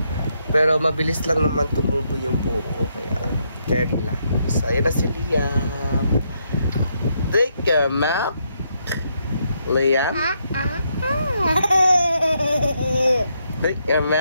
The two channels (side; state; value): both; inverted; correlation -0.77